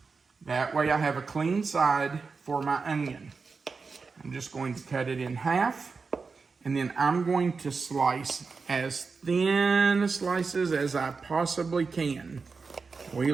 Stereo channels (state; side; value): quieter; left; 4.7 dB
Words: That way I have a clean side for my onion. I'm just going to cut it in half, and then I'm going to slice as thin slices as I possibly can. We